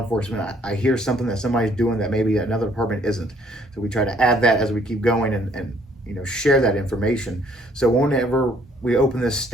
I hear something that somebody's doing that maybe another department isn't. So we try to add that as we keep going and share that information. So whenever we open this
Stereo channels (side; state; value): both; normal; correlation 0.63